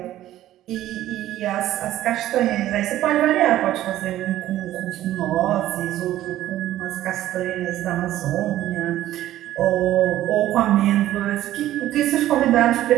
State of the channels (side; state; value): left; quieter; 13.7 dB